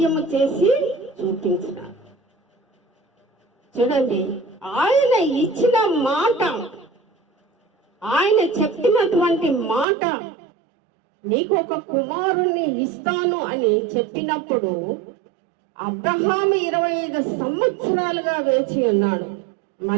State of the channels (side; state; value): left; drops out; at 9.9 s